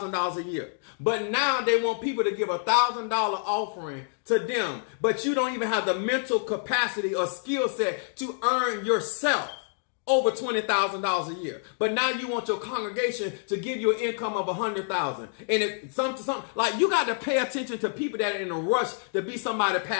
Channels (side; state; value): right; silent; 60 dB below the other